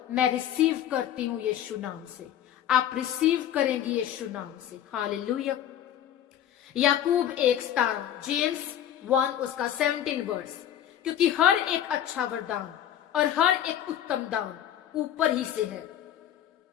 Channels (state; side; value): quieter; right; 10.7 dB